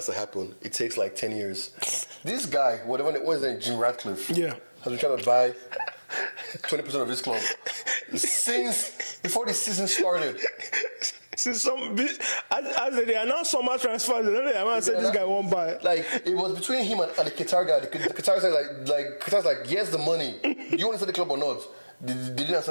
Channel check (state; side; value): inverted; both; correlation -1.00